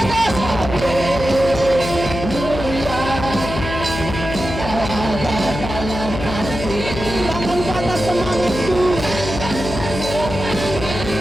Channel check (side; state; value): left; noise; hum, 7 dB below the sound